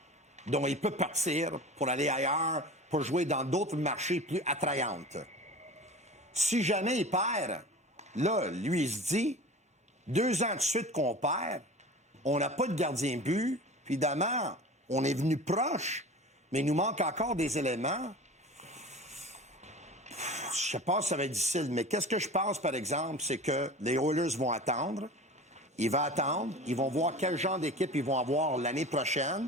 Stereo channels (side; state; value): both; normal; correlation 0.36